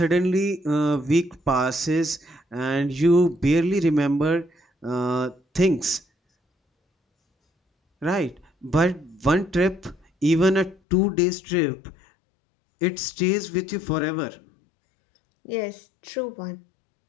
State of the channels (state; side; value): drops out; right; at 10.8 s